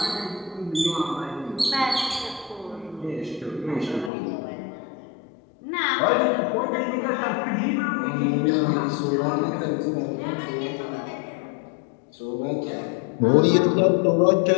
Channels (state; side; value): drops out; right; at 4.1 s